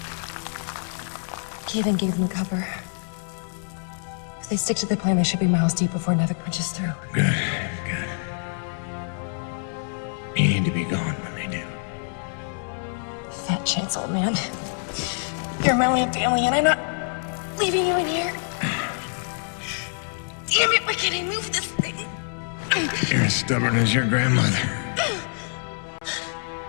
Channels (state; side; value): silent; right; 59 dB below the other